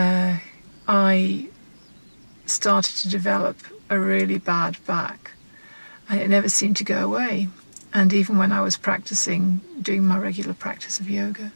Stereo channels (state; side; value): inverted; both; correlation -1.00